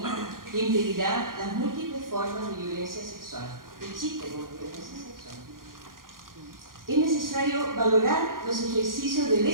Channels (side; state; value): left; late; 0.91 ms